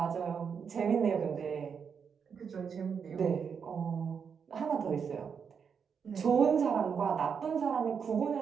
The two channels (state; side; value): quieter; left; 6.6 dB